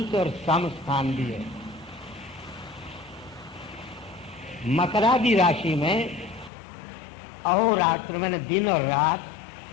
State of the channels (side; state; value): right; drops out; at 6.5 s